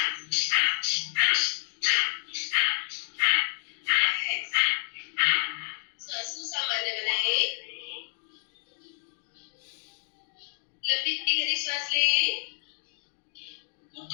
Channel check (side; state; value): right; silent; 58 dB below the other